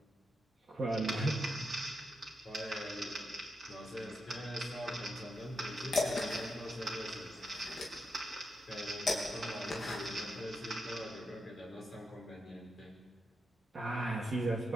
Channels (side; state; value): both; normal; correlation 0.84